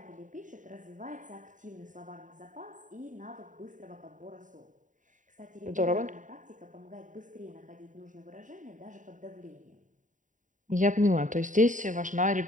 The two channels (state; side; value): late; left; 0.37 ms